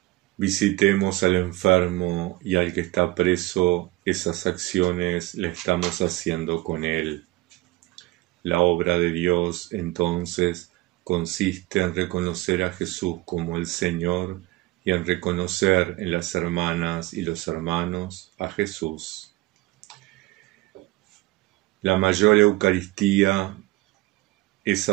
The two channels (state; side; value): quieter; left; 19.5 dB